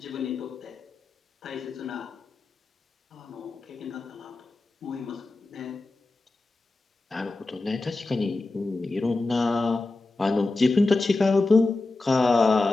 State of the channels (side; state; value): right; quieter; 3.3 dB